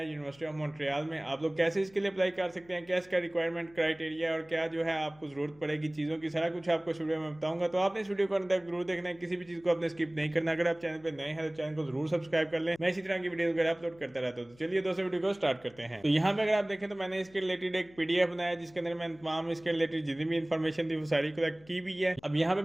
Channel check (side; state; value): left; noise; hum, 27 dB below the sound